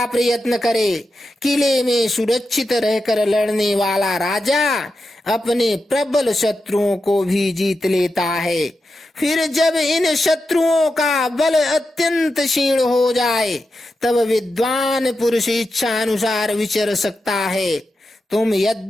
प्रयत्न करे। किले में सुरक्षित रहकर लड़ने वाला राजा अपने प्रबल शत्रुओं को भी जीत लेता है। फिर जब इन शत्रुओं का बल अत्यंत क्षीण हो जाए, तब विद्वान पुरुष इच्छा अनुसार विचर सकता है। तुम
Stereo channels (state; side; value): normal; both; correlation 0.89